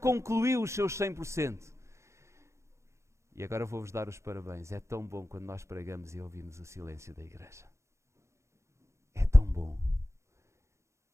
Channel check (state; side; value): late; left; 0.14 ms